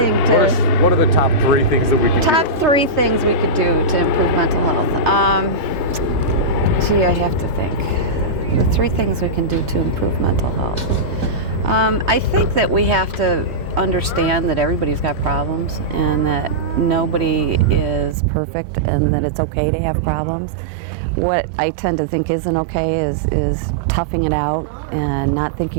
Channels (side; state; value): left; drops out; at 18.2 s